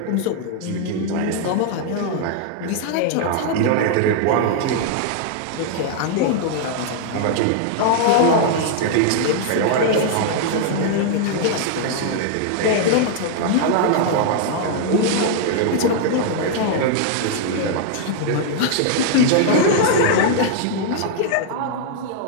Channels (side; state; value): both; different; correlation -0.01